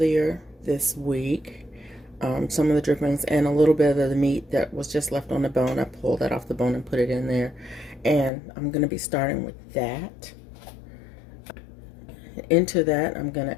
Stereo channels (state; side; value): drops out; right; at 8.3 s